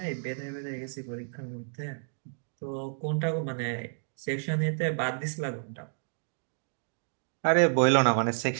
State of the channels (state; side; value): silent; left; digital silence